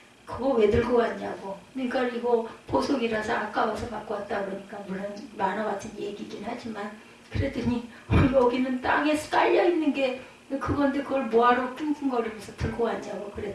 그거 왜 들고 왔냐고. 그러니까 이거 보석이라서 아까워서 갖고 왔다 그러니까 물론 만화 같은 얘기긴 하지만 그랬더니 여기는 땅에 깔려있는 게 그건데 그걸 뭐하러 끙끙거리면서 들고 왔냐고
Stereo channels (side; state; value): both; identical; correlation 1.00